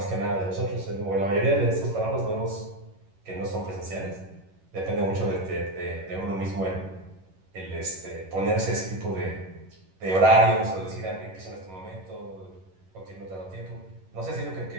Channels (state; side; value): late; left; 11 ms